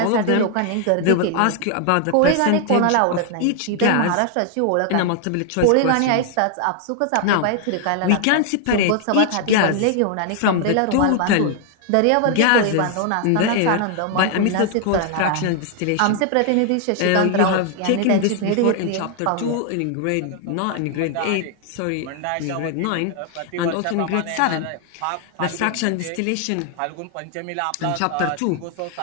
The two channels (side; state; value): both; different; correlation 0.00